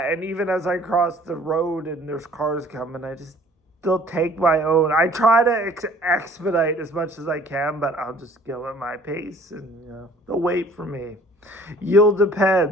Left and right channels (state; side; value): normal; both; correlation 0.53